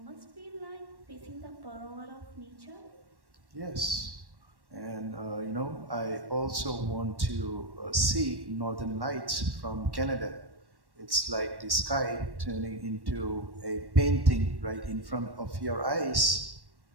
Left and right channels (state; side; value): late; left; 1.1 ms